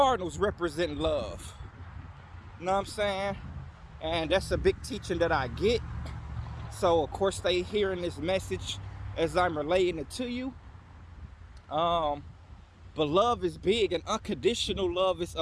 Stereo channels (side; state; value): both; identical; correlation 1.00